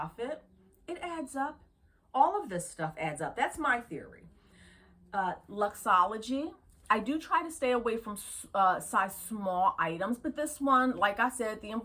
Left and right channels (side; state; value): both; identical; correlation 1.00